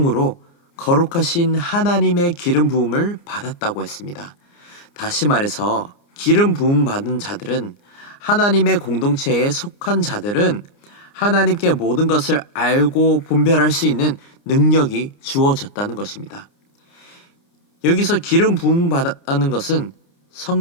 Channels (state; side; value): late; right; 29 ms